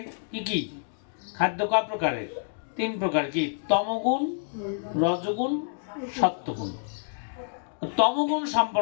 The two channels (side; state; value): right; silent; digital silence